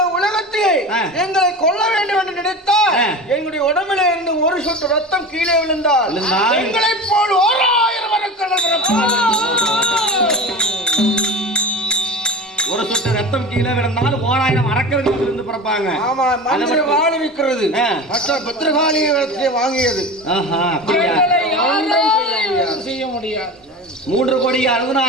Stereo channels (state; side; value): normal; both; correlation 0.30